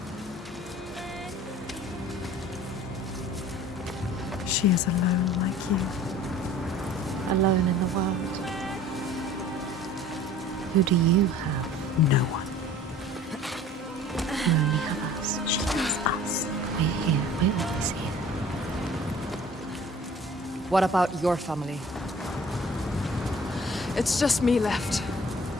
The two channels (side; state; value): both; normal; correlation 0.47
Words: She is alone like you. Alone in the world. Who do you have? No one. You only have us. She has us. We're here. We're always here. What about your family? It's just me left.